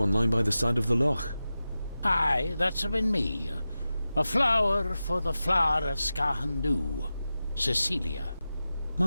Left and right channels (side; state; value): both; inverted; correlation -0.94